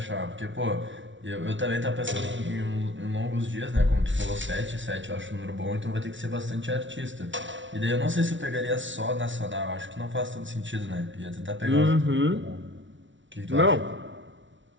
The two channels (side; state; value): left; late; 0.55 ms